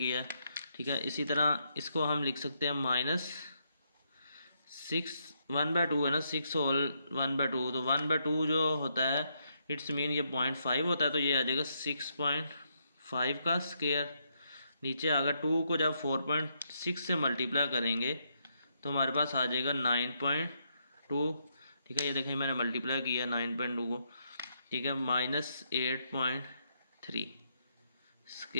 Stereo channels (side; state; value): both; inverted; correlation -0.77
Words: है। ठीक है, इसी तरह इसको हम लिख सकते हैं माइनस 1/2 है ना, 6 होल 1/2, तो 1/2 जो होता है इट्स मीन ये 0.5 होता है, तो ये आ जाएगा 6.5 का स्क्वायर। नीचे अगर 2 को जब 4.6 से मल्टीप्लाई करेंगे तो हमारे पास आ जाएगा 9.2। ठीक है, ये देखें मैंने मल्टीप्लाई किया 9.2 को। ठीक है, माइनस 8.3